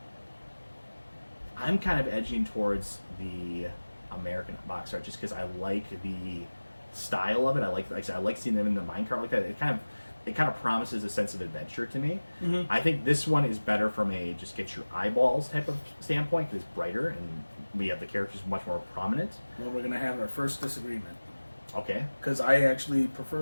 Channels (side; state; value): both; inverted; correlation -1.00